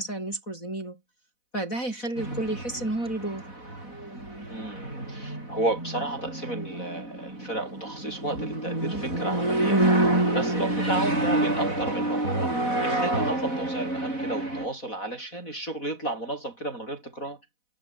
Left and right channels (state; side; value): late; right; 4.1 ms